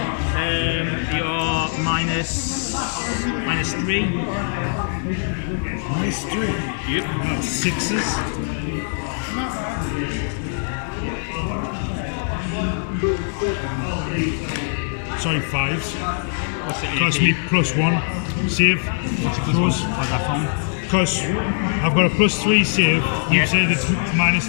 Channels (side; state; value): right; silent; 64 dB below the other